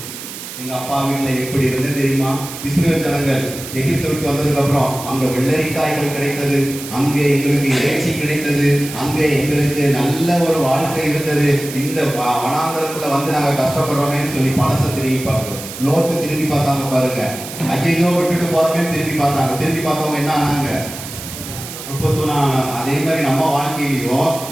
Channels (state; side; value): noise; right; hiss, 11 dB below the sound